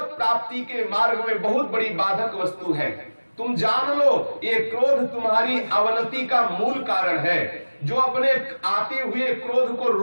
प्राप्ति के मार्ग में बहुत बड़ी बाधक वस्तु है। तुम जान लो, ये क्रोध तुम्हारी अवनति का मूल कारण है। जो अपने आते हुए क्रोध को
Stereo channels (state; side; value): inverted; both; correlation -1.00